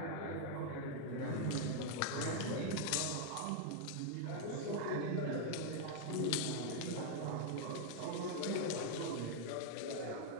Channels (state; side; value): different; both; correlation 0.00